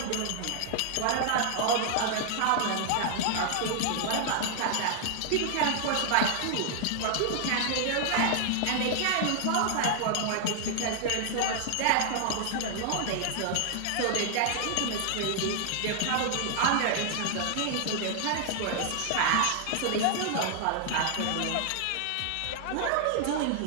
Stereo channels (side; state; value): both; different; correlation 0.00